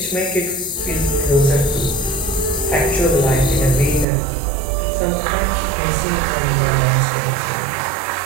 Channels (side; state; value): left; drops out; at 4.0 s